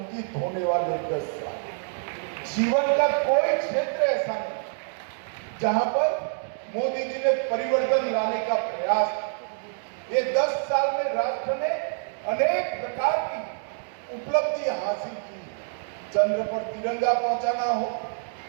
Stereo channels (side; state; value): left; silent; digital silence